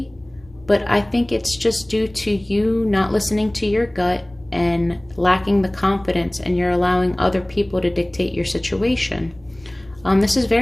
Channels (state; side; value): noise; left; rumble, 26 dB below the sound